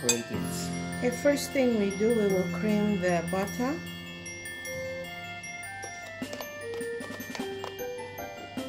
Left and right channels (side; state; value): both; identical; correlation 1.00